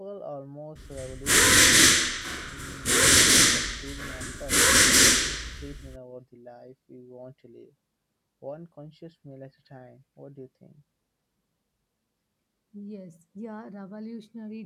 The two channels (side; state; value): both; identical; correlation 1.00